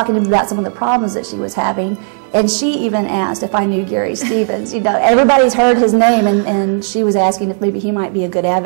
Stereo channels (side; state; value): left; silent; 71 dB below the other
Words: to me about some of the problems that she was having, and she even asked if I knew Gary Stevens. You know, everybody's heard his name, and she was asking if maybe he might be a good